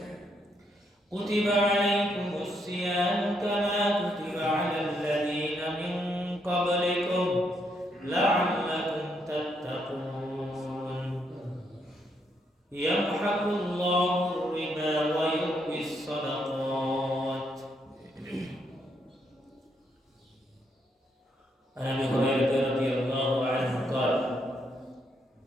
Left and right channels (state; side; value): normal; both; correlation 0.76